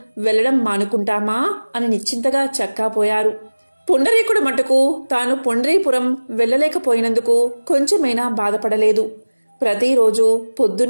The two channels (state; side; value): inverted; both; correlation -1.00